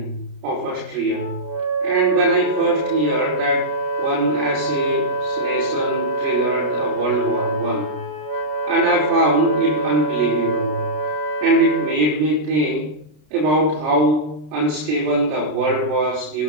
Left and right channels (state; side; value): late; left; 33 ms